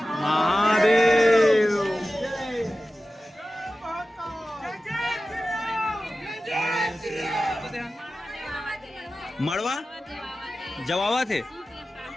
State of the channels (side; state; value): both; normal; correlation 0.95